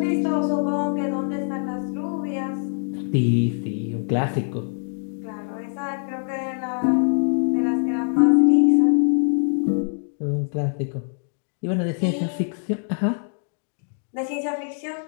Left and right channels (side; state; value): right; silent; digital silence